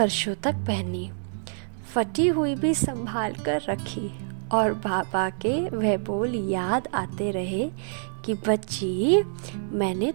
तक पहनी, फटी हुई भी संभाल कर रखी और बाबा के वह बोल याद आते रहे कि बच्ची, मैंने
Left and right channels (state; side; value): silent; left; 61 dB below the other